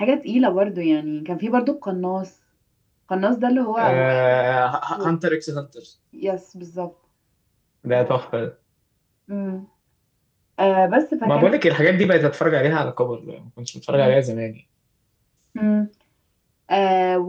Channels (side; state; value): both; identical; correlation 1.00